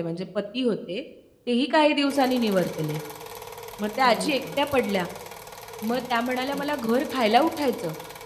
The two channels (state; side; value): identical; both; correlation 1.00